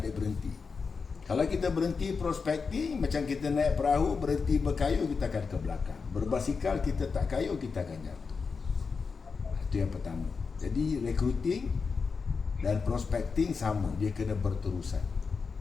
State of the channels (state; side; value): quieter; right; 5.1 dB